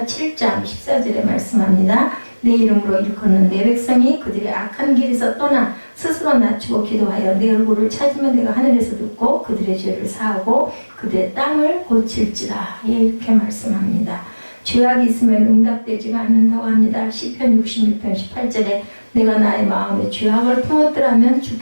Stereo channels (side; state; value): both; inverted; correlation -1.00